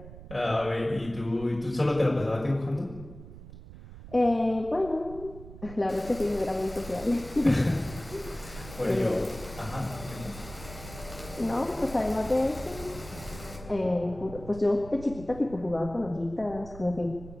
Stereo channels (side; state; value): right; noise; rumble, 15 dB below the sound